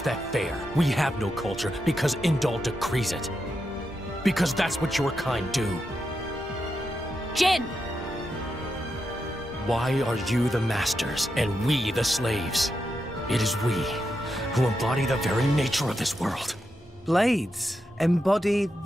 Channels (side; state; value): both; normal; correlation 0.86